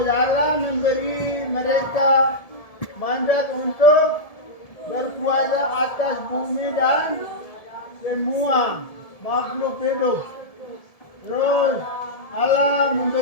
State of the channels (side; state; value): right; late; 1.7 ms